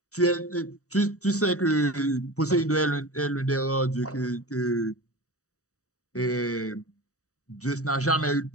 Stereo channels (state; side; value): late; right; 0.66 ms